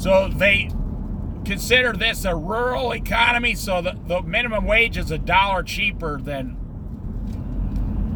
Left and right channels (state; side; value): identical; both; correlation 1.00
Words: they consider this a rural economy, so the minimum wage is $1 cheaper than